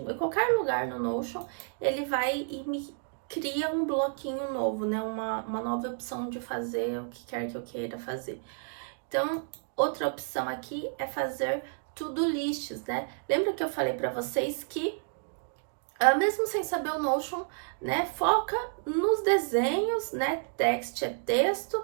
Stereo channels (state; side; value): silent; left; digital silence